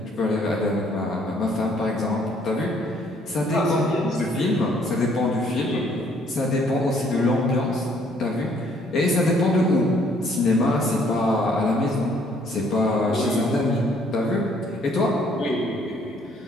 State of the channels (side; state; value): both; normal; correlation 0.64